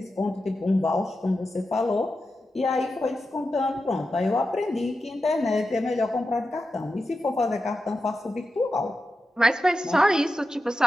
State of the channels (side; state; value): both; normal; correlation 0.90